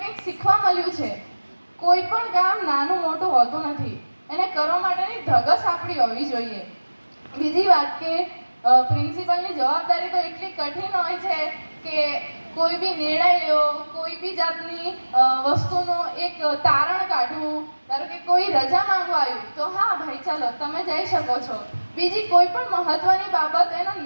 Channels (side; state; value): both; inverted; correlation -1.00